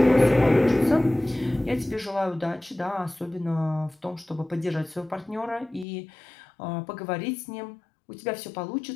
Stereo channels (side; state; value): right; drops out; at 5.9 s